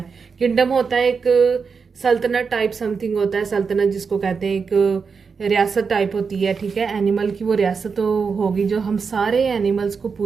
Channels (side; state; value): left; quieter; 5.5 dB